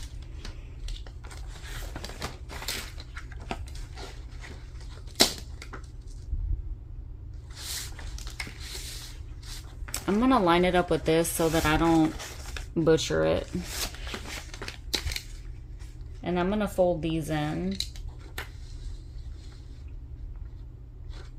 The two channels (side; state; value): both; identical; correlation 1.00